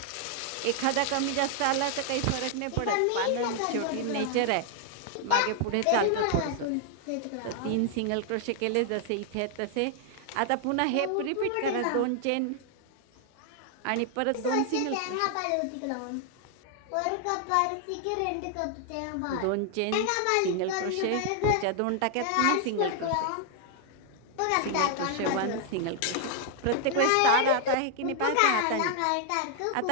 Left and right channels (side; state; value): both; different; correlation 0.00